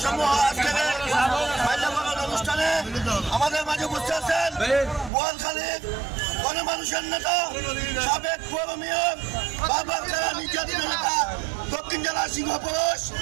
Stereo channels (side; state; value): left; drops out; at 5.1 s